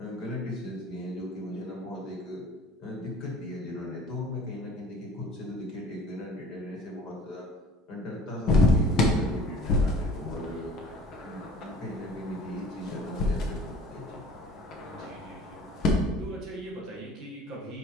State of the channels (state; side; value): normal; both; correlation 0.48